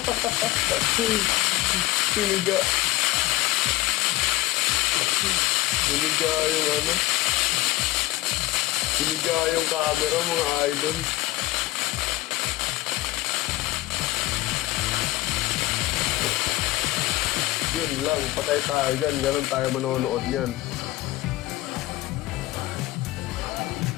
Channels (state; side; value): quieter; right; 18.3 dB